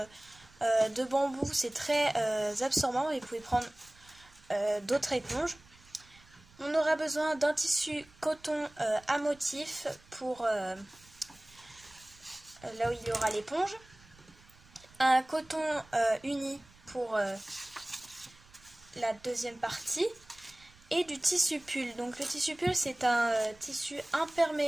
de bambou, c'est très absorbant et vous pouvez prendre d'autres éponges. On aura besoin d'un tissu coton à motif pour là où il y aura l'éponge, un coton uni pour la deuxième partie et du tissu pull. Donc le tissu pull c'est un tissu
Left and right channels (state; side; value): noise; right; rumble, 26 dB below the sound